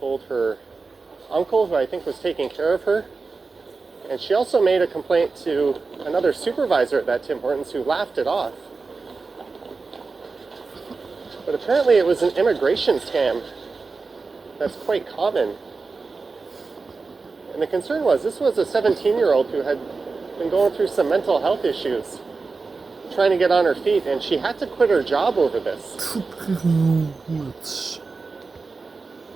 her uncle, who I think was taking care of her. And she also made a complaint to another supervisor at that Tim Hortons, who laughed it off. But apparently it was an immigration scam that's quite common. And the concern was, this was a 17-year-old who had been going through some mental health issues, trying to get on her feet, and she had to quit her job over this.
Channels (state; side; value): quieter; left; 4.2 dB